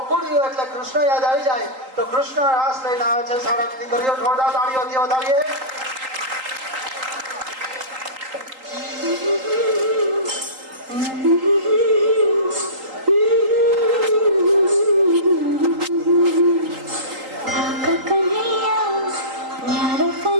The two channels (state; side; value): late; left; 3.8 ms